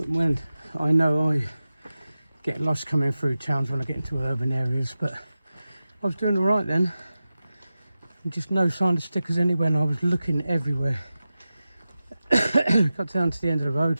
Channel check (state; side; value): inverted; both; correlation -0.94